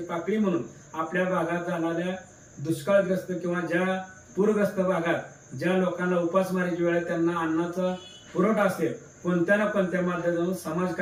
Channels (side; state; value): both; identical; correlation 1.00